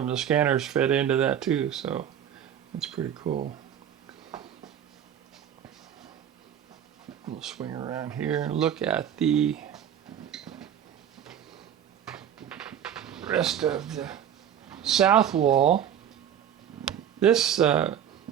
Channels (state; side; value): quieter; left; 9.5 dB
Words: the scanners fed into that too, so it's pretty cool. We'll swing around here and look at the rest of the south wall. This